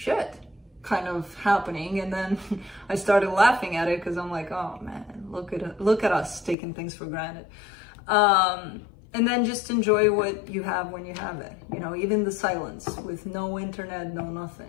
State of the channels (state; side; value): drops out; right; at 6.6 s